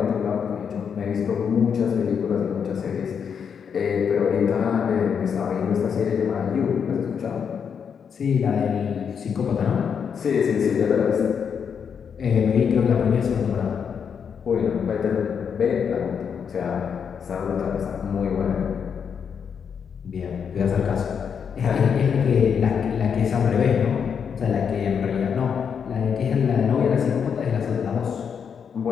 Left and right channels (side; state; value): right; quieter; 7.0 dB